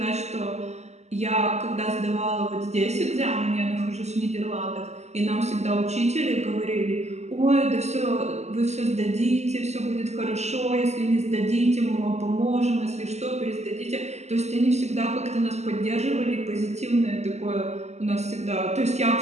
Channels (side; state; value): left; late; 0.33 ms